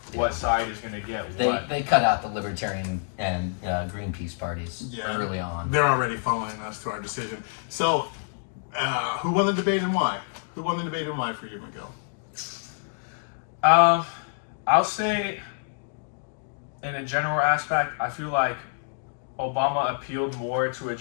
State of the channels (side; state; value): right; silent; 60 dB below the other